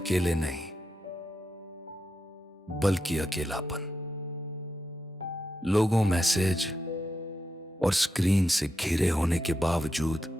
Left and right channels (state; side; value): normal; both; correlation 0.85